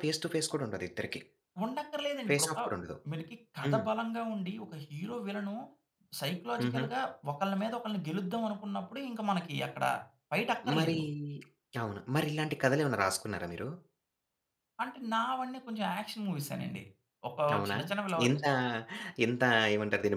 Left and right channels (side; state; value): both; identical; correlation 1.00